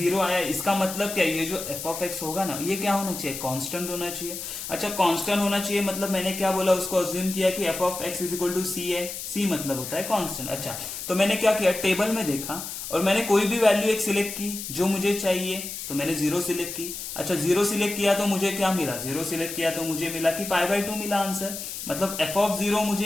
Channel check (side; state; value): left; noise; hiss, 7 dB below the sound